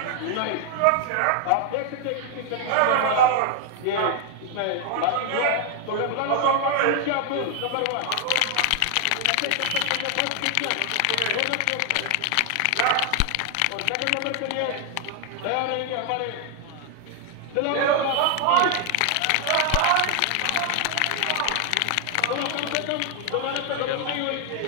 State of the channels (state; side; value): different; both; correlation 0.00